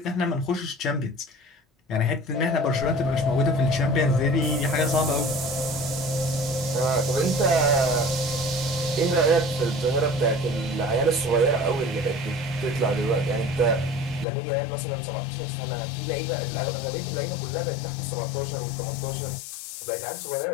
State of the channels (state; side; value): drops out; right; at 14.2 s